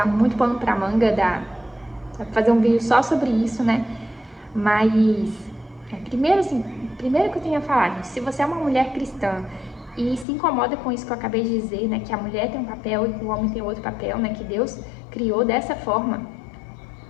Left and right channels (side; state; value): right; drops out; at 10.2 s